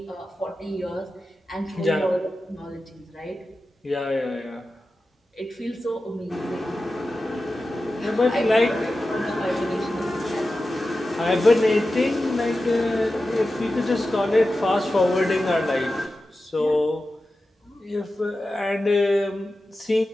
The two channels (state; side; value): normal; both; correlation 0.93